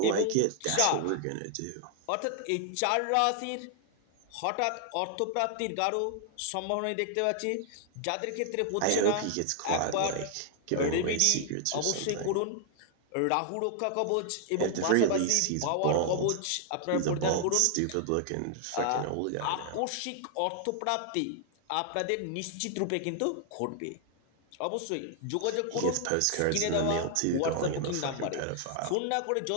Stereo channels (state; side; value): different; both; correlation 0.00